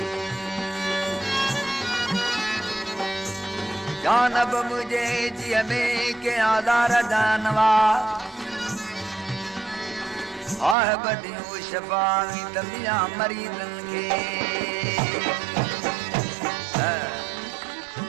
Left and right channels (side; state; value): left; drops out; at 10.8 s